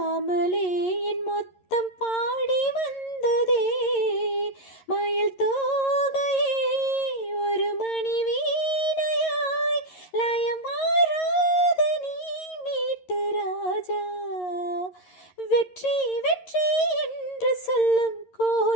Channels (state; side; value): late; right; 11 ms